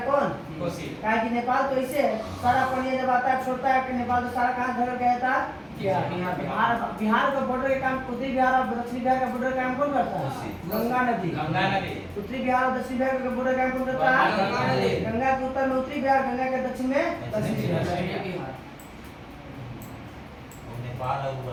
कौन? कोसी। कहा कि नेपाल तो इसे सारा पानी जब आता है छोड़ता है कि नेपाल तो सारा कहाँ घर गया था? बिहार का बॉर्डर का काम उत्तरी बिहार और दक्षिणी बिहार का बॉर्डर का काम कौन करता है? गंगा नदी। गंगा नदी। उत्तरी बिहार और दक्षिणी बिहार का बॉर्डर का काम कौन करता है? गंगा नदी। गंगा के उत्तर में उत्तरी बिहार, गंगा के दक्षिण में दक्षिणी बिहार। और नेपाल और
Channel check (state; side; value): identical; both; correlation 1.00